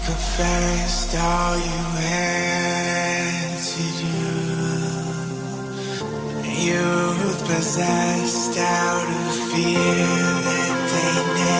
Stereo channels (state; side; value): identical; both; correlation 1.00